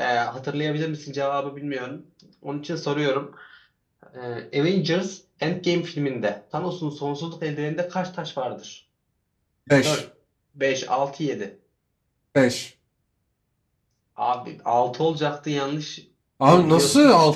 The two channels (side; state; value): both; identical; correlation 1.00